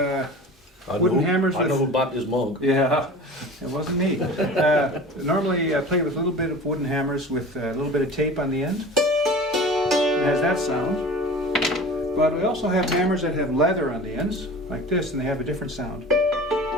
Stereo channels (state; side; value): normal; both; correlation 0.38